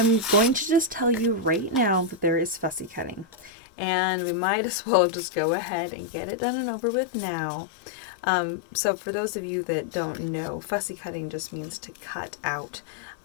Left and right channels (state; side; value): drops out; right; at 3.5 s